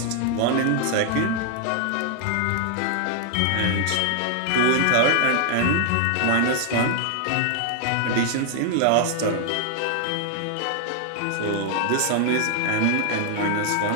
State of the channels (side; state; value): both; different; correlation 0.00